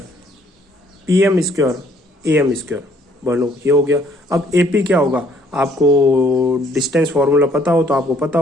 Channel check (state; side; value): normal; both; correlation 0.63